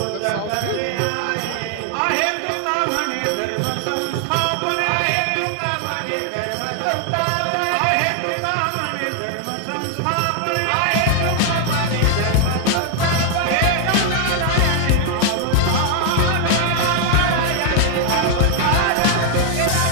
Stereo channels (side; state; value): both; different; correlation 0.00